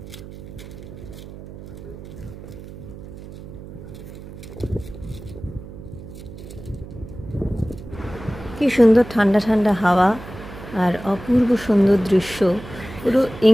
কি সুন্দর ঠান্ডা ঠান্ডা হাওয়া আর অপূর্ব সুন্দর দৃশ্য, পুরো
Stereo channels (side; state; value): right; noise; hum, 14 dB below the sound